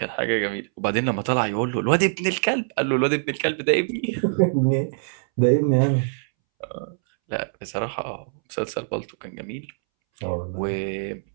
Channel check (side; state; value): left; silent; 63 dB below the other